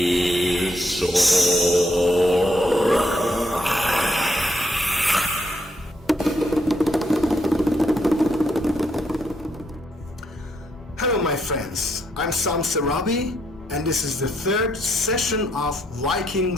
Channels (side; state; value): both; normal; correlation 0.75